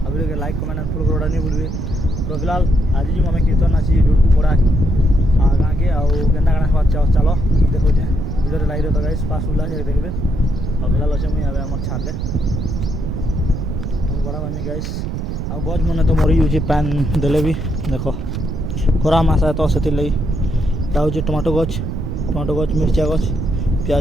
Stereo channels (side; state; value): right; noise; rumble, 4 dB below the sound